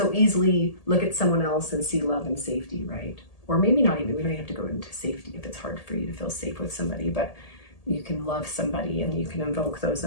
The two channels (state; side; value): late; right; 1.8 ms